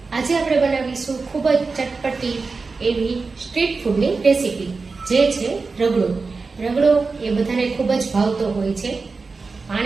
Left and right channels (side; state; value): left; quieter; 4.3 dB